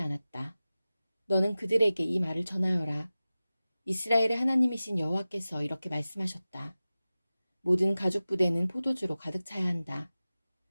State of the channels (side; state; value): both; inverted; correlation -0.96